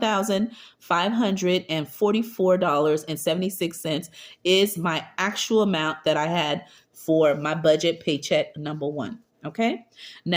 is my actual amount that I had for my budget paycheck number one. Okay,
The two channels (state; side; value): identical; both; correlation 1.00